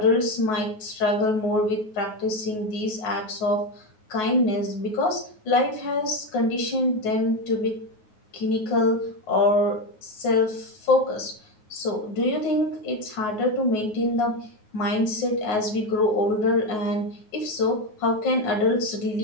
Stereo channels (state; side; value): late; right; 9.4 ms